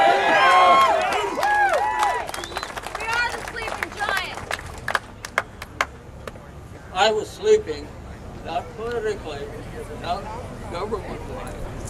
the sleeping giant. I was sleeping, not politically, not government-wise,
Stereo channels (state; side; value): identical; both; correlation 1.00